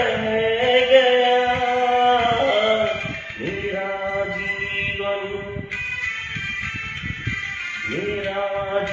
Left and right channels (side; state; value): both; identical; correlation 1.00